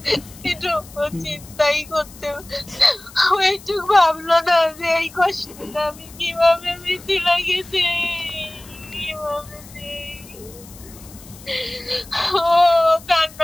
কিন্তু ও চিন্তাই করতে, ও একটু ভাবলো না যে এই কষ্টটা আমি কিভাবে মিথি লাগেছে, কিভাবে ও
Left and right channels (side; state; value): left; noise; hiss, 20 dB below the sound